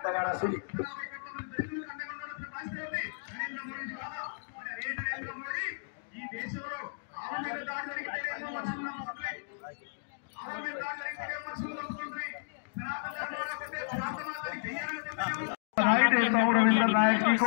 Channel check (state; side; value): silent; right; digital silence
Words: नगारा सुनिए। बधाई देता हूँ रविंद्र नायक जी